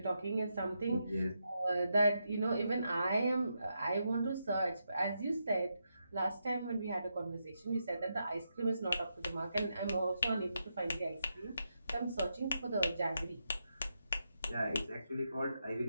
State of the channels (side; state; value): both; inverted; correlation -0.83